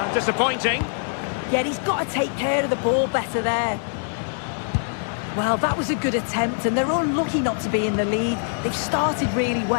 Disappointing. Yeah, he's got to take care of the ball better there. Well, that was a good attempt, and they're unlucky not to be in the lead. They've started really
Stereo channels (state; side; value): silent; right; digital silence